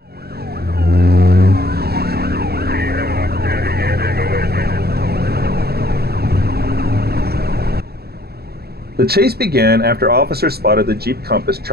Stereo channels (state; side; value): late; left; 0.46 ms